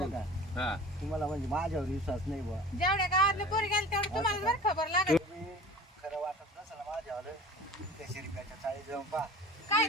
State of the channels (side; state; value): both; normal; correlation 0.41